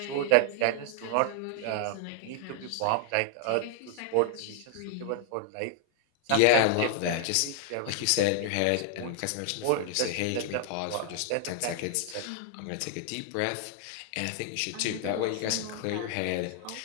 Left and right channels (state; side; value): different; both; correlation 0.00